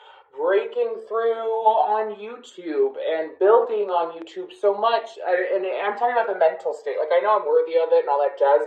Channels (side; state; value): both; identical; correlation 1.00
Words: breaking through on YouTube and building on YouTube so much. And I'm talking about the mental state. Like, I know I'm worthy of it and all that jazz,